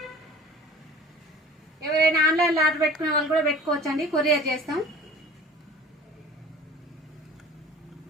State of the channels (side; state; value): both; normal; correlation 0.43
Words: ఎవరైనా ఆన్లైన్లో ఆర్డర్ పెట్టుకునే వాళ్ళు కూడా పెట్టుకోవచ్చండి, కొరియర్ చేస్తాం.